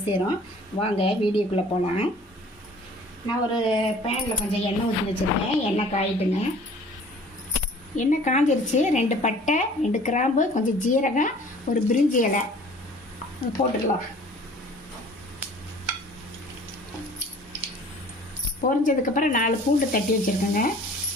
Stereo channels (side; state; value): both; normal; correlation 0.50